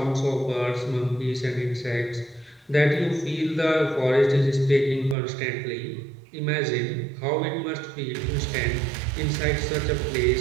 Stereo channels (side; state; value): left; drops out; at 5.2 s